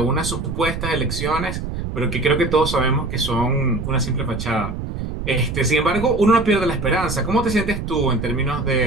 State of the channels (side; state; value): right; noise; rumble, 5 dB below the sound